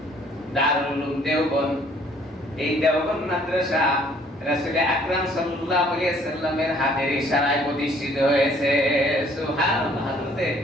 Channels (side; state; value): both; normal; correlation 0.60